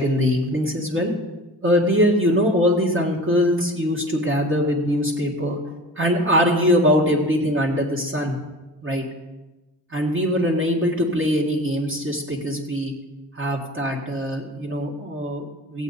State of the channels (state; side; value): normal; both; correlation 0.39